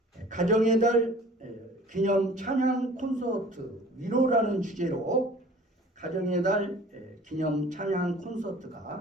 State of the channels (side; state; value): both; normal; correlation 0.48